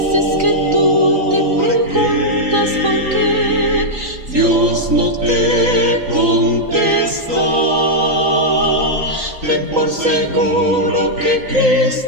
que tú te preguntas por qué Dios no te contesta. Ten por seguro que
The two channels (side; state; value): left; late; 3.9 ms